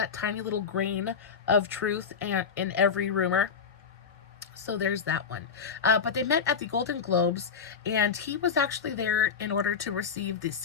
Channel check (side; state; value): right; quieter; 6.2 dB